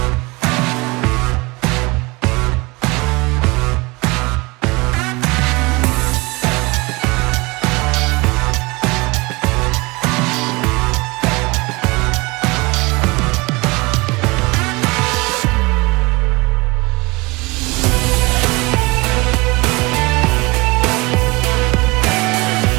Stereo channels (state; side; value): quieter; left; 24.8 dB